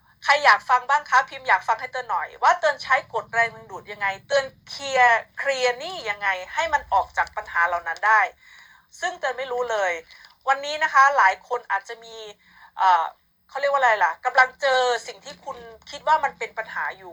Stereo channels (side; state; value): both; identical; correlation 1.00